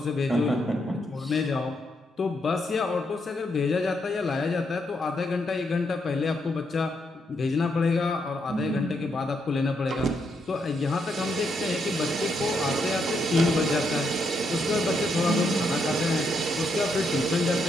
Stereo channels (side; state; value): both; normal; correlation 0.78